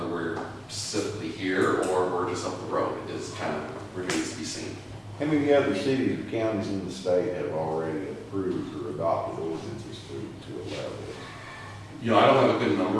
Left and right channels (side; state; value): both; identical; correlation 1.00